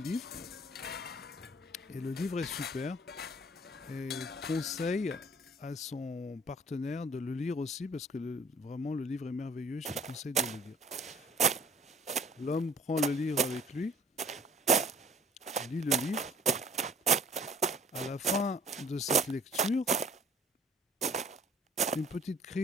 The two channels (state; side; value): normal; both; correlation 0.52